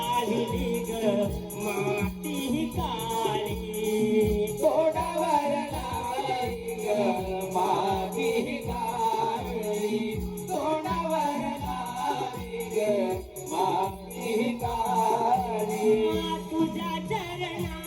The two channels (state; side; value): identical; both; correlation 1.00